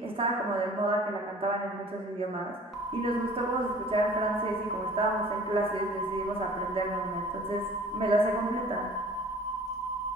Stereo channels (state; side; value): normal; both; correlation 0.48